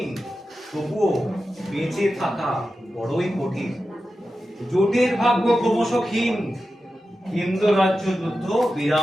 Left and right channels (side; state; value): both; normal; correlation 0.92